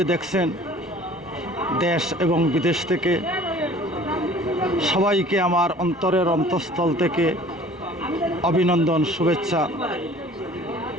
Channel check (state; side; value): normal; both; correlation 0.49